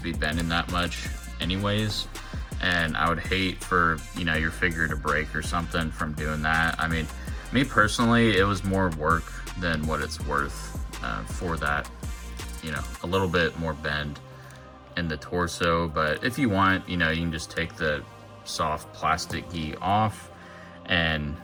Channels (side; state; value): both; identical; correlation 1.00